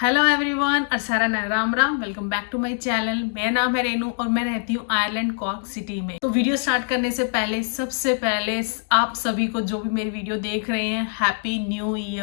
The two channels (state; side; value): silent; right; 58 dB below the other